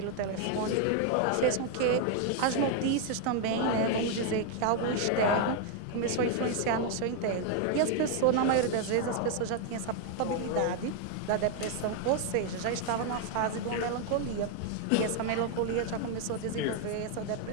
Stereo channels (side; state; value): both; different; correlation 0.01